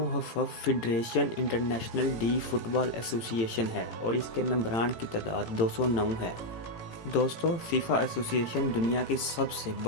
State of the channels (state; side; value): late; right; 18 ms